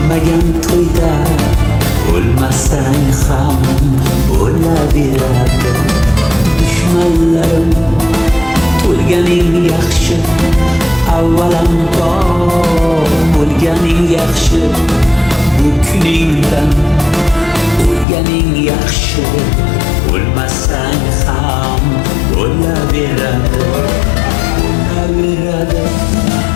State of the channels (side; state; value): right; drops out; at 18.1 s